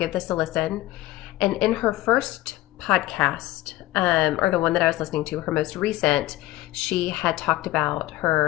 this a listen. And in her first podcast, or the one that I was listening to, her most recent, she had talked about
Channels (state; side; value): quieter; right; 16.9 dB